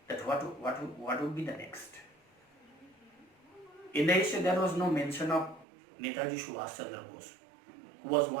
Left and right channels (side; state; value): left; drops out; at 5.7 s